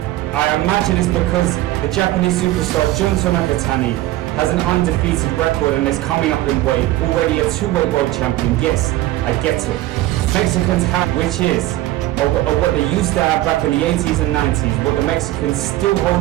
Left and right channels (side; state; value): left; quieter; 16.0 dB